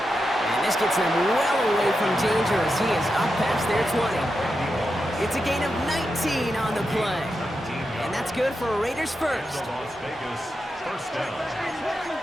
And this gets them well away from danger as he is up past their 20. It's a gain of 19 on the play. And that's good for Raiders first. Out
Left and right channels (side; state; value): both; normal; correlation 0.88